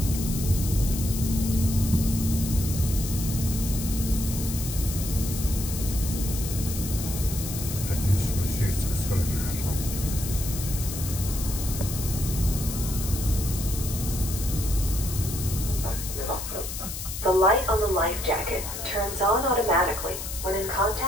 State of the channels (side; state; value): left; noise; hiss, 7 dB below the sound